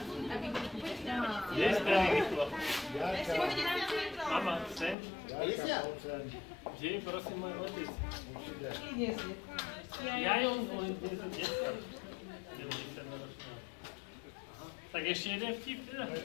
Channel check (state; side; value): drops out; right; at 5.0 s